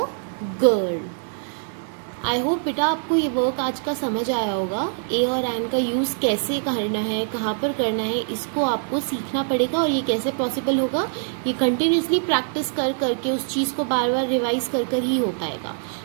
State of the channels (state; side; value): silent; left; digital silence